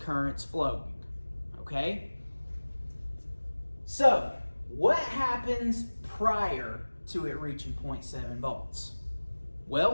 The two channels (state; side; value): inverted; both; correlation -1.00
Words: flowing, okay? So, what happens prior to it reaching 0.7 volts?